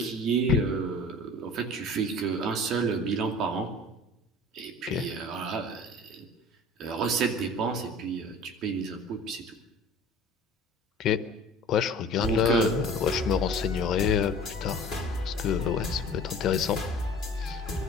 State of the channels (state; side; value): normal; both; correlation 0.43